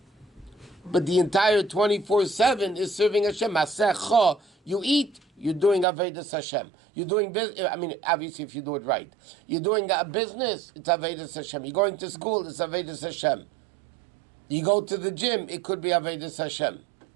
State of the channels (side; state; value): left; drops out; at 5.9 s